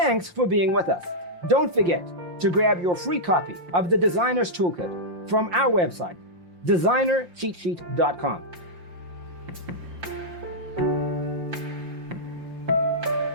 for being with us. Don't forget to grab your free copy of the Designer's Toolkit from our website, designercheatsheet.com.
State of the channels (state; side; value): late; left; 5.7 ms